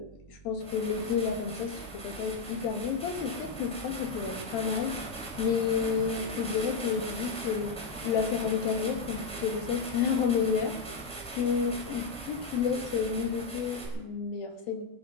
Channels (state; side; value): quieter; right; 4.8 dB